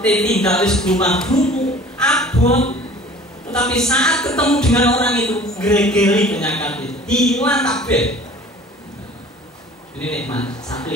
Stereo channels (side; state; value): both; normal; correlation 0.46